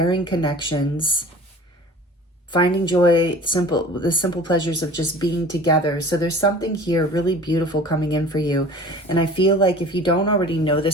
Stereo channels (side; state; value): both; normal; correlation 0.43